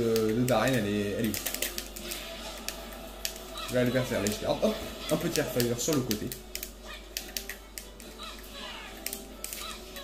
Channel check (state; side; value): identical; both; correlation 1.00